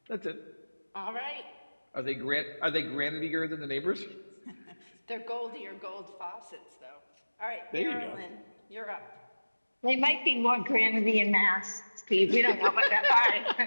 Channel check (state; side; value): inverted; both; correlation -1.00